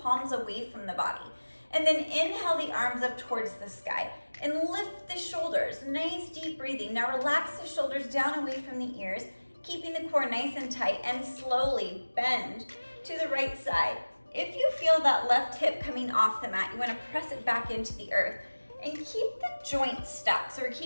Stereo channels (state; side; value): inverted; both; correlation -1.00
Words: away from the body. And then inhale the arms up towards the sky and lift the shoulders. Nice deep breathing. Now relax the shoulders down away from the ears, keeping the core nice and tight, and slowly bend to the right side. If you feel that left hip coming off the mat, you want to press it back into the earth and keep the joints stacked. So we're